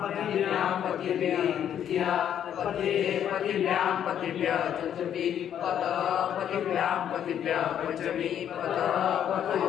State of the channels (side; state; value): right; quieter; 9.7 dB